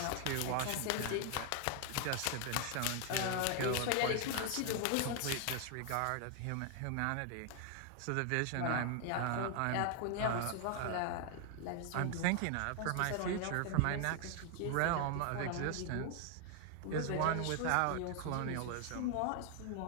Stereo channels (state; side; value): different; both; correlation 0.00